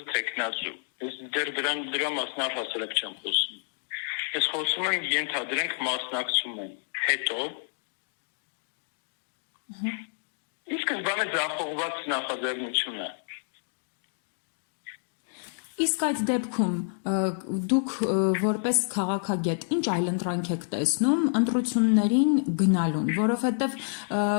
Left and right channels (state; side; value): silent; right; digital silence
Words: թեկնածու։ Ես դեռ դրա մասին առհասարակ չեմ խոսում։ Ես խոսում եմ ենթադրենք մասնակցում են։ Հետո իսկ բանը ձախողված նախաձեռնություն է։ Իսկ այդ դեպքում դուք որպես քաղաքագետ ինչ այլընտրանք եք տեսնում ընտրություններին գնալուն, որովհետև